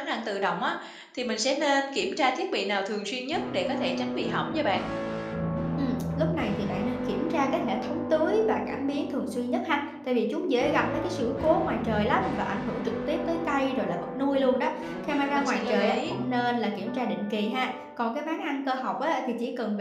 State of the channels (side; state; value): both; identical; correlation 1.00